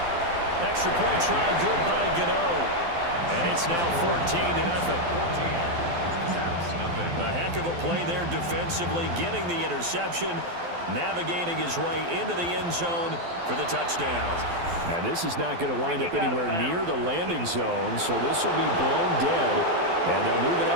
Extra point try, good by Gano. And it's now 14-0. A heck of a play there defensively, getting the interception, navigating his way into the end zone for the touchdown. And this is not going to wind up anywhere near the landing zone, so this will be blown dead. And they'll move it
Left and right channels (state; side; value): late; left; 12 ms